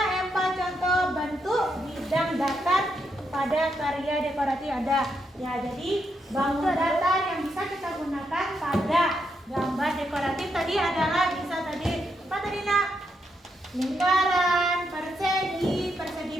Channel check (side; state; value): both; normal; correlation 0.80